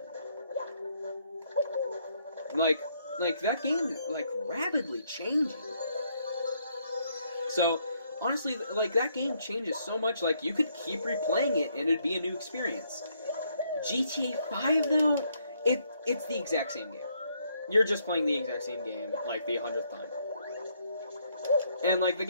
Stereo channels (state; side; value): inverted; both; correlation -0.72